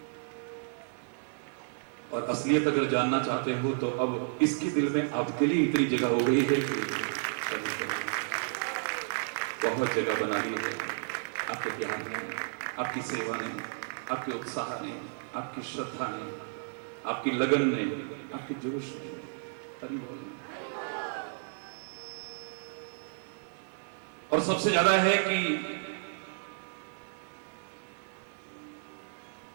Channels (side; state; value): left; silent; digital silence